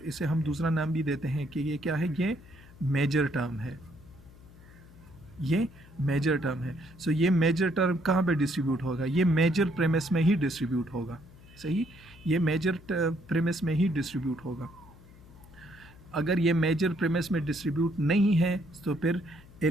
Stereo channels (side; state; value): left; noise; hum, 22 dB below the sound